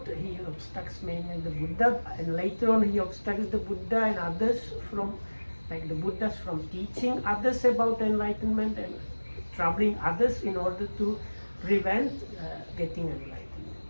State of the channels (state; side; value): inverted; both; correlation -1.00